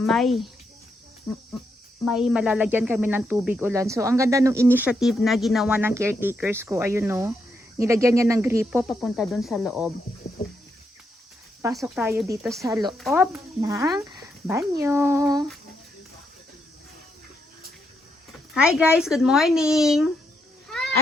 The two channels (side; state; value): both; normal; correlation 0.79